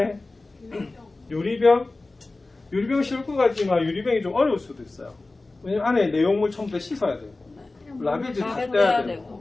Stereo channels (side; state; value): right; quieter; 3.2 dB